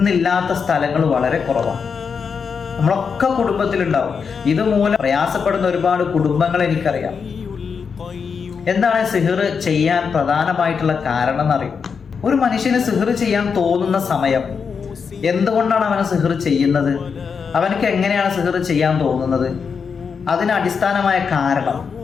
സ്ഥലങ്ങൾ വളരെ കുറവാണ്. നമ്മളൊക്കെ കുടുംബത്തിലുണ്ടാവും. ഇതുമൂലം പ്രയാസപ്പെടുന്ന ഒരുപാട് കുടുംബങ്ങൾ എനിക്കറിയാം. എന്താണ് സിഹ്ർ ചെയ്യാൻ പ്രധാനമായിട്ടുള്ള കാരണം എന്നറിയും? ഒരു മനുഷ്യന് സിഹ്ർ ചെയ്യാൻ തോന്നുന്ന സമയം, എന്തുകൊണ്ടാണ് അവന് സിഹ്ർ ചെയ്യുന്നത്, അവനക്ക് എങ്ങനെയാണ് സിഹ്ർ ചെയ്യാൻ തോന്നുന്നത്, അതിന് അടിസ്ഥാനമായ കാരണം,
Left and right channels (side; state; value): right; quieter; 6.0 dB